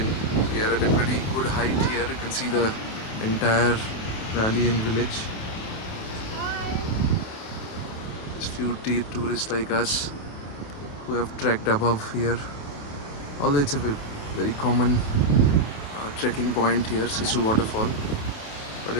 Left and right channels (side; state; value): right; late; 28 ms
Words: we are at a pretty good height here. You can see the entire valley and village. There's few tourists like us who have trekked above here. Although it's a very common trekking point here, Sissu Waterfall, but a